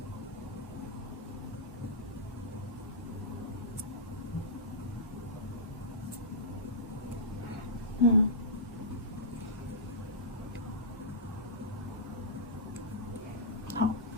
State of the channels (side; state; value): both; normal; correlation -0.16